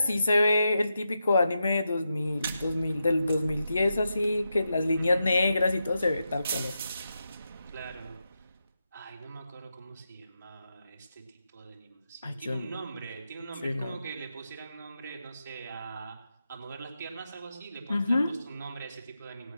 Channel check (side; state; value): both; inverted; correlation -0.87